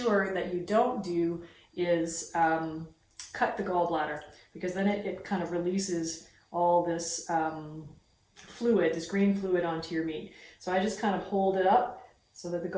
that you don't do is cut the gallbladder, because then it kind of releases all this fluid, this green fluid onto your meat. So I just kind of hold it up so that the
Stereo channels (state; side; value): identical; both; correlation 1.00